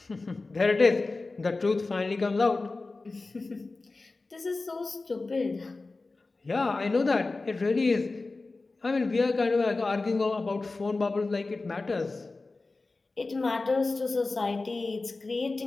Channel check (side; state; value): right; quieter; 3.5 dB